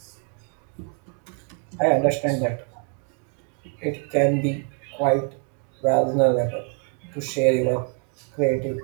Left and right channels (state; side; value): quieter; left; 39.1 dB